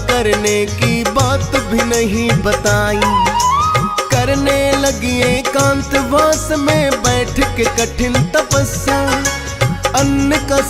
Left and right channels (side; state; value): both; identical; correlation 1.00